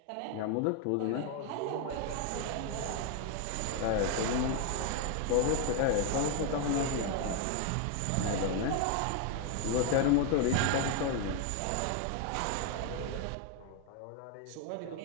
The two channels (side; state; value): both; different; correlation 0.01